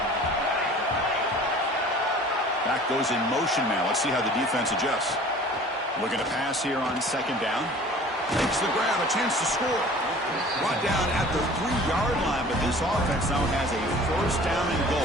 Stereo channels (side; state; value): both; normal; correlation 0.46